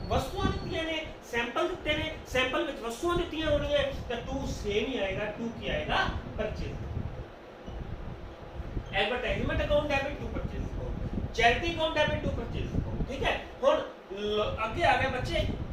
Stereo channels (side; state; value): both; identical; correlation 1.00